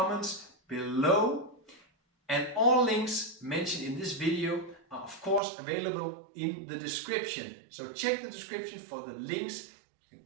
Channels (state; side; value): drops out; left; at 5.4 s